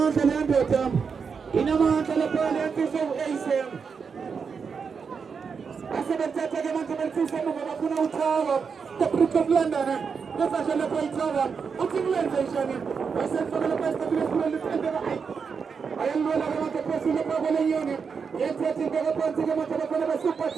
and Anderton. In a month and a penalty so ASM. I said that I am going to say Makuna Tower, the Brook of London, the Fashion of White Tower, what's in London? I said for the best of the world. I am going to want to pursue the problem unit. Yet, I think I want to get a super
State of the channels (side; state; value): left; quieter; 5.8 dB